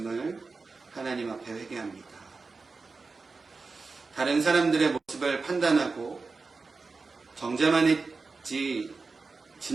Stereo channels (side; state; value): left; quieter; 4.2 dB